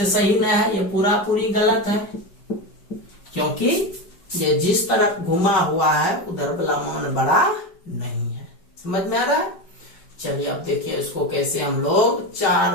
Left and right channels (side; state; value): right; late; 5.1 ms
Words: सही नहीं है, ये पूरा पूरी गलत है, क्योंकि ये जिस तरफ घुमा हुआ है उधर वाला मान बड़ा नहीं है। समझ में आ रहा है? चलिए अब देखिए इसको कैसे हम लोग